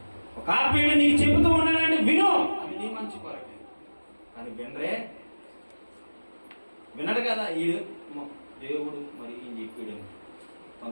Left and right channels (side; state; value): both; inverted; correlation -1.00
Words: ఒక ఆత్మీయుడు నీకు చెబుతూ ఉన్నాడంటే వినో, అది నీ మంచి కొరకే. కానీ వినడు కదా ఈడు. దేవుడు మరి ఈయన చెప్పాడు.